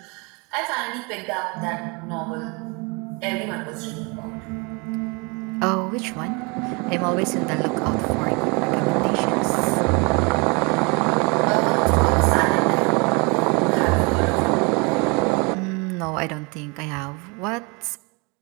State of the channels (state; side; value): quieter; left; 30.2 dB